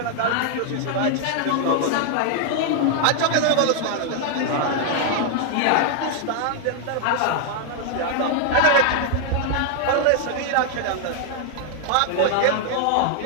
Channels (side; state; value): both; different; correlation 0.00